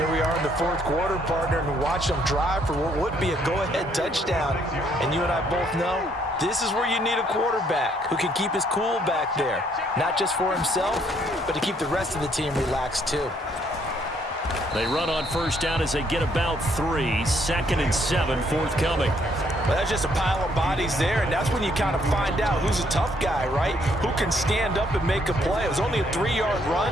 we are in the 4th quarter, partner, and watch them drive for what would be a go-ahead touchdown. And you and I both know this is where you need a quarterback who can keep his cool back there. Not just for himself, but to keep the rest of the team relaxed too. They run on 1st down as they get about 3. 2nd and 7 forthcoming. Well, that's just a pile of bodies there, and that's when you kind of find out who's a tough guy, right? Who can stand up and make a play. It was only a 3-yard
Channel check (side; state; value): both; normal; correlation 0.68